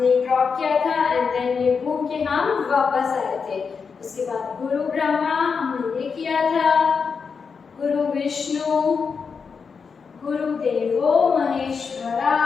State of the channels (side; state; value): right; quieter; 5.6 dB